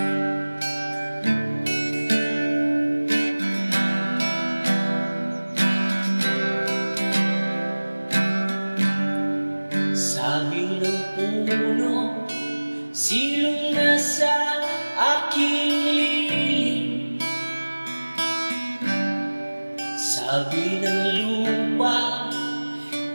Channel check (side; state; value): both; inverted; correlation -1.00